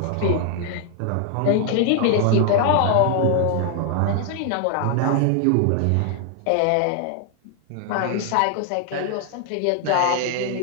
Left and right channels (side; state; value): both; different; correlation 0.00